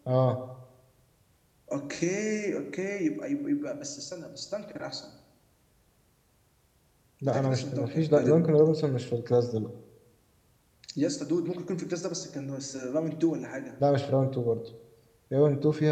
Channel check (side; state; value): both; identical; correlation 1.00